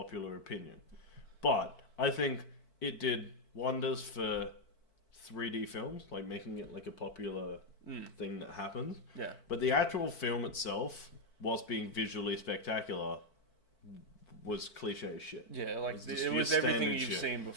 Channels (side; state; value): right; late; 4.5 ms